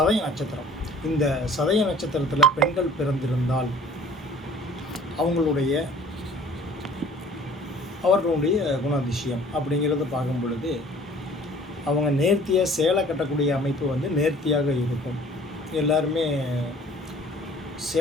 நட்சத்திரம். இந்த சதய நட்சத்திரத்தில் பெண்கள் பிறந்திருந்தால் அவர்களுடைய குணாதிசயம் அப்படிங்கிறத பார்க்கும் பொழுது அவங்க நேர்த்தியாக சேலை கட்டக்கூடிய அமைப்பு நேர்த்தியாக இருக்கும். எல்லாருமே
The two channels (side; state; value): both; normal; correlation 0.51